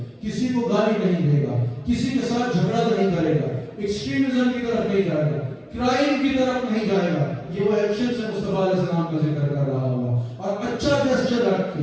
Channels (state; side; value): identical; both; correlation 1.00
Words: کسی کو گالی نہیں دے گا، کسی کے ساتھ جھگڑا نہیں کرے گا، ایکسٹریمزم کی طرف نہیں جائے گا، کرائم کی طرف نہیں جائے گا۔ یہ وہ ایکشن سے مصطفیٰ علیہ السلام کا ذکر کر رہا ہوگا اور اچھا جسچر رکھ